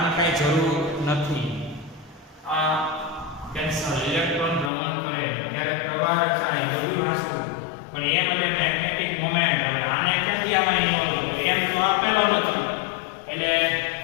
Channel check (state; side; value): drops out; right; at 4.7 s